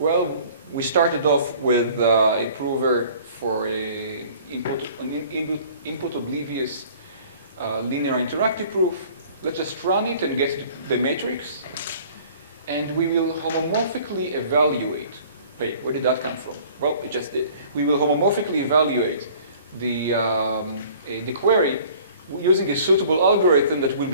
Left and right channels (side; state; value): both; inverted; correlation -0.50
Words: we started off with a prover for an input oblivious linear interactive proof. Let's just run it and get the matrix. And we will homomorphically evaluate. Wait, where did that come from? Well, it just did. We will homomorphically evaluate the query using a suitable algorithm that will